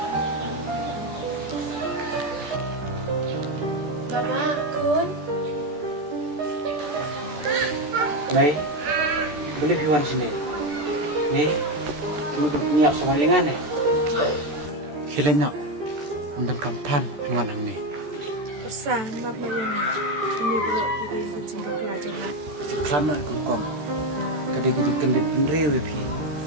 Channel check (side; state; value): left; late; 14 ms